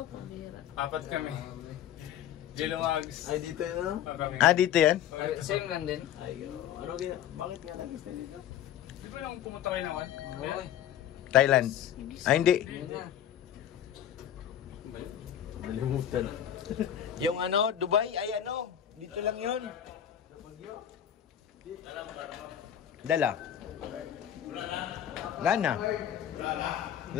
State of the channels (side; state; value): right; quieter; 10.4 dB